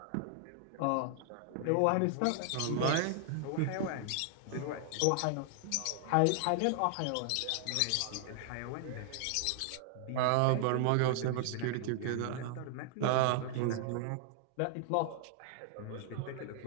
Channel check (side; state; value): both; different; correlation 0.00